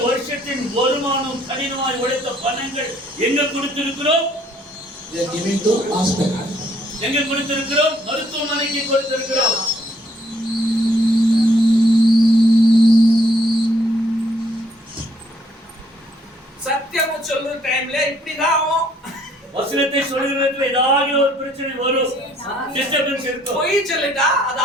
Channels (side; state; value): both; normal; correlation 0.65